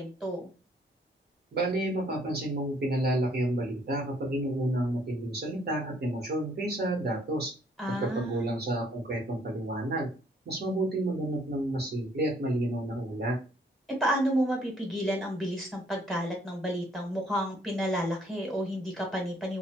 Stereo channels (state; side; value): normal; both; correlation 0.64